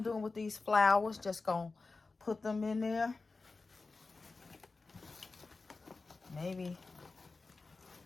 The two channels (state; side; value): quieter; right; 3.9 dB